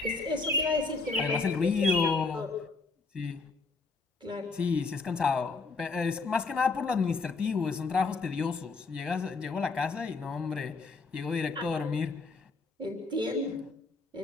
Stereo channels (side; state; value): right; quieter; 4.1 dB